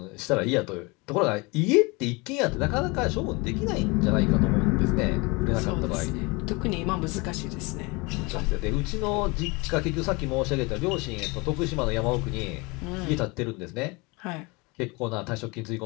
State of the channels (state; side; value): quieter; right; 26.5 dB